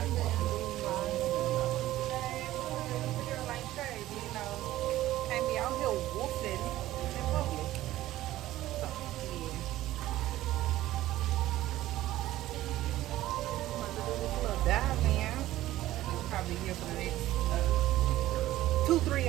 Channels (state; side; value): quieter; left; 15.1 dB